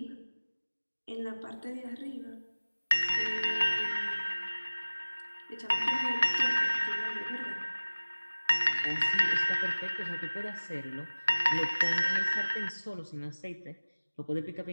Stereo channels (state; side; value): inverted; both; correlation -1.00